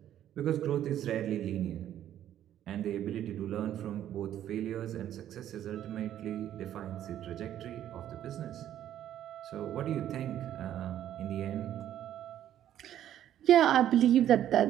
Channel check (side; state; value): left; quieter; 11.4 dB